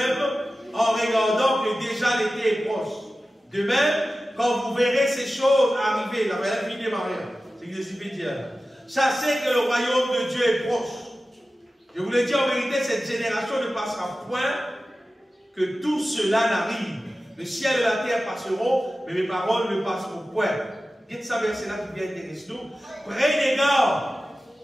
en regardant que déjà l'été est proche. De même, quand vous verrez ces choses arriver, la vie des mariés, c'est que je suis dire, sachez que le royaume de Dieu est proche. Je vous le dis en vérité, cette génération ne passera point que tout cela n'arrive. Le ciel et la terre passeront, mais mes paroles ne passeront point. Dites ça, verset là qui vient intéresser nous. Prenez garde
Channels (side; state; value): both; normal; correlation 0.95